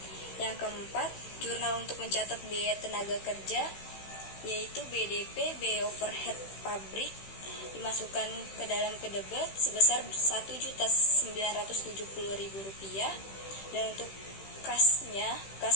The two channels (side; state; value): right; late; 15 ms